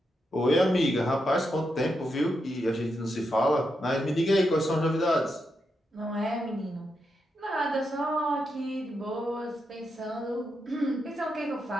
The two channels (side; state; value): both; normal; correlation 0.84